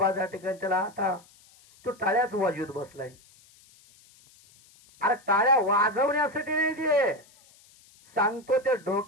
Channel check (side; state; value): left; noise; hiss, 28 dB below the sound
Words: त्या ठिकाणी त्याला आता तो टाळ्याच वाजवत बसलाय. अरे टाळ्या वाजवण्यासाठी नाही ते, सांगतो ते